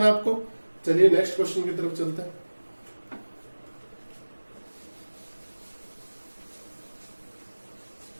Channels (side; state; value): both; inverted; correlation -1.00